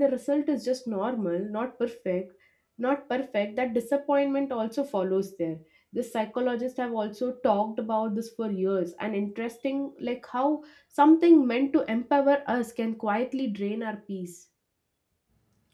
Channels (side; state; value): both; identical; correlation 1.00